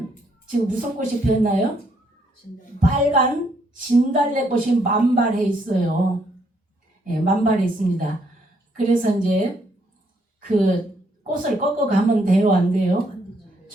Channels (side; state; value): both; normal; correlation 0.71